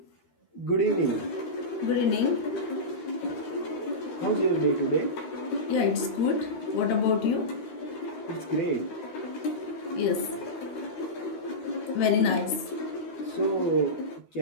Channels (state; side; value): late; right; 12 ms